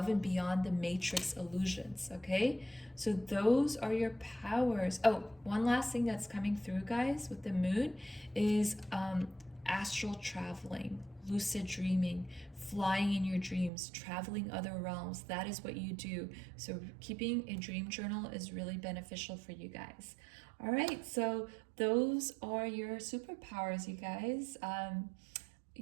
and beyond the matrix illusions, okay? So those are your powers. Oh, one last thing that's coming through, guys, with the moon is astral traveling, lucid dreaming, flying in your dreams, traveling other realms. That is what you do. So keeping a dream journal is really beneficial for you guys. All right, so those are your superpowers, you guys.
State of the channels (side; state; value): left; drops out; at 13.7 s